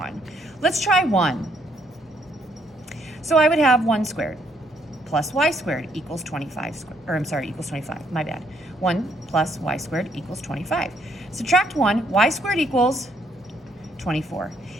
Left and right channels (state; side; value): normal; both; correlation 0.70